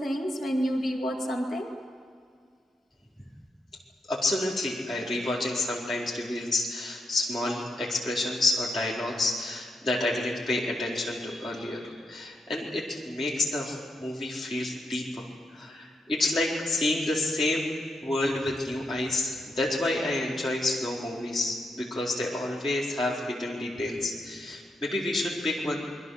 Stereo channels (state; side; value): normal; both; correlation 0.82